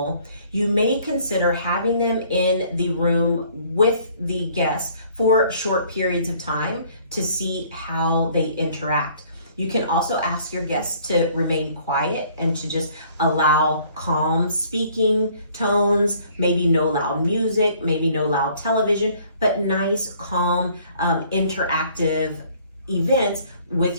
you may consider having them in the room with the guests for short periods of time to see how they interact. You can also ask your guests to remain quiet and to just allow calm speaking tones, maybe no loud music, maybe no loud television, but nice, calm, interactive events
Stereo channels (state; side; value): inverted; both; correlation -0.58